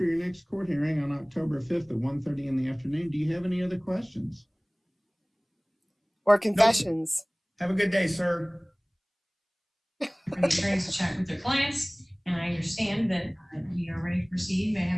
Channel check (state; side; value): identical; both; correlation 1.00